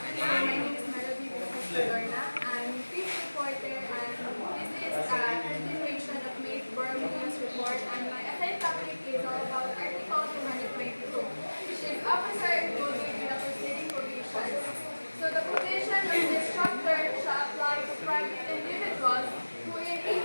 my name is Melody CADORNA. I'm fifth reporter and this is a continuation of May Borough News report and my assigned topic is all about Article 222, which is Officer Included in the Proceeding Provisions. So, the provision of this chapter shall apply to private individuals who in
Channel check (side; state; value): both; inverted; correlation -1.00